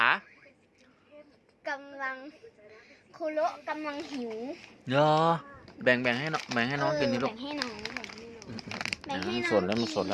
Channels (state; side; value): identical; both; correlation 1.00